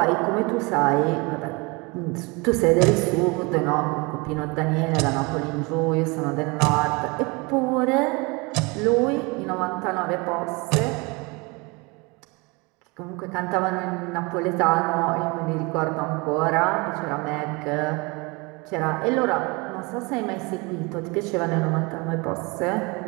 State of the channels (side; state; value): left; quieter; 27.2 dB